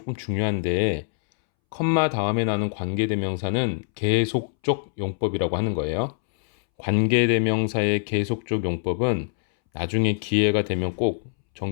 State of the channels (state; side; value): silent; right; 63 dB below the other